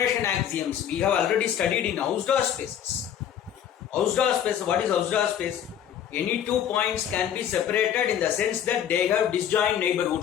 axioms we have already studied in Hausdorff spaces. Hausdorff space, what is Hausdorff space? Any two points can be separated in the sense that they have disjoint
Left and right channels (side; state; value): right; quieter; 9.6 dB